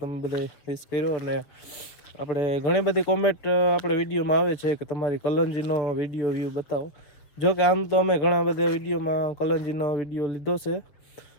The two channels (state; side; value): late; right; 7.1 ms